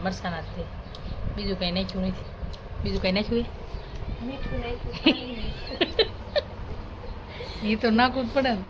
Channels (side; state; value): both; identical; correlation 1.00